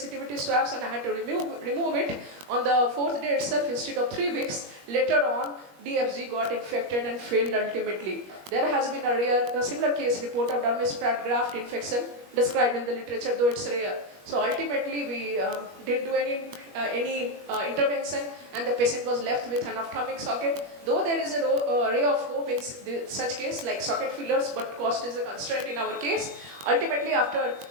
swabs and I had to remove it on the fourth day itself instead of 3 weeks. Later on, DFG got infected and failed ultimately. There has been a similar case report of dermis fat graft infection described in the literature, though it's rare. So ultimately we didn't do any intervention, and the patient was left with an ophthalmic socket. Though there is a ray of hope in such case like socket fillers, but cost is a constraint in our case. Ultimately after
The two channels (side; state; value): left; late; 21 ms